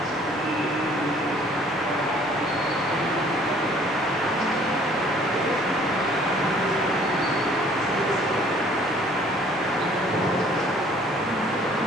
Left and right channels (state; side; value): noise; right; rumble, 27 dB below the sound